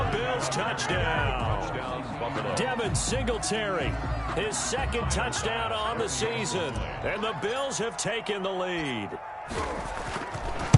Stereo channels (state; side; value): identical; both; correlation 1.00